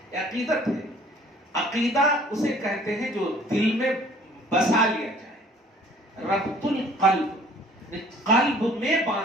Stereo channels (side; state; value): both; normal; correlation 0.54